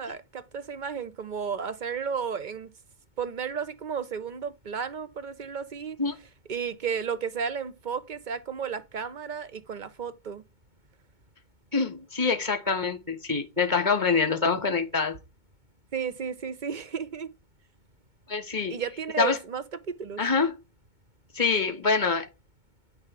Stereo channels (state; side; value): late; left; 2.2 ms